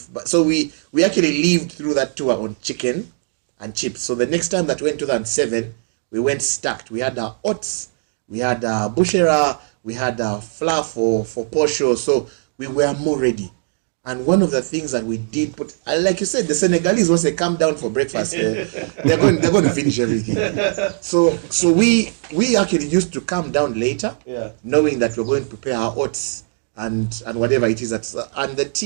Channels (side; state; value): left; silent; 66 dB below the other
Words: But so we actually lived through that tour on chicken and chips. So the next time that we went to 2007, we went stacked. We had our oats, we had our bushera, we had our flour for posho. So we were more ready. And one of the things that we did put, like you said, the Senegalese, once they come down for breakfast, they're going to finish everything. So we actually used to come down later, knowing that we're going to prepare our oats and whatever it is. And the